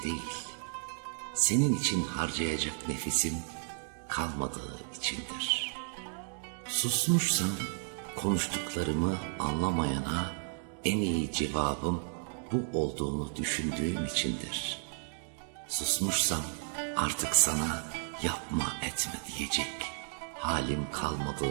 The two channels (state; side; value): silent; left; 56 dB below the other